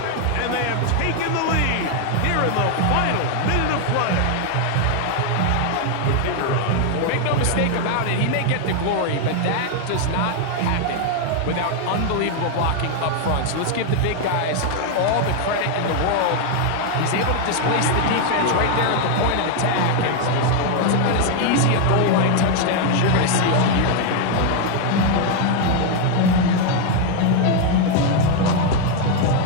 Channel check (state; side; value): different; both; correlation 0.00